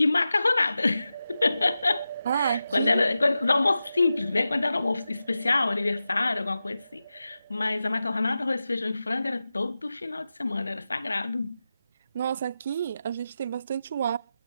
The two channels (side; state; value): both; inverted; correlation -0.92